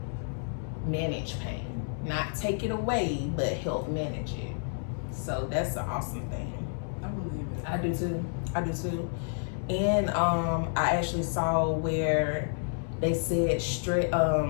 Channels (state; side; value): silent; right; digital silence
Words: manage pain. Not take it away, but help manage it. So that's an awesome thing. I believe it. I do too. I do too. And I actually saw where they said